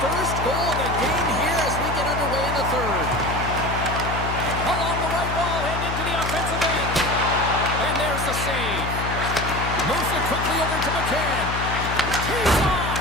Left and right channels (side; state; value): left; noise; hum, 4 dB below the sound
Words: first goal of the game here as we get underway in the third. Along the right wall and into the offensive end. And there's the save. Moves it quickly over to McCann. Tees off.